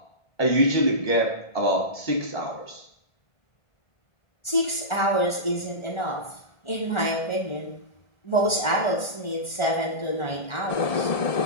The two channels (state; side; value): late; right; 1.3 ms